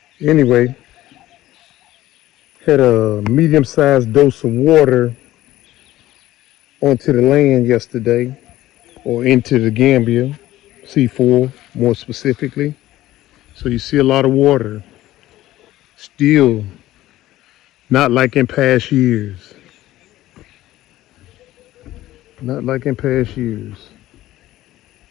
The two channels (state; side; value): quieter; right; 15.3 dB